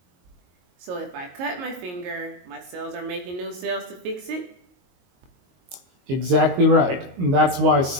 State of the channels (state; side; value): late; left; 22 ms